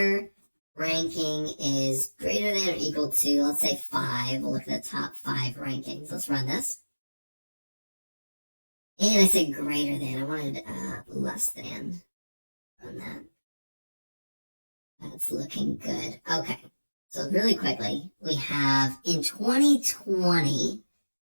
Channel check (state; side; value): inverted; both; correlation -1.00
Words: ranking is greater than or equal to, let's say 5. We'll look at the top 5 rankings. Let's run this. And I said greater than. I wanted less than on that. That's looking good. Okay. So really quickly, we have in 2020,